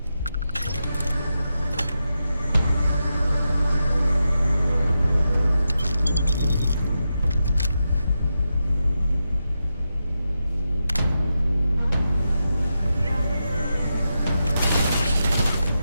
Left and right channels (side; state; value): both; inverted; correlation -0.88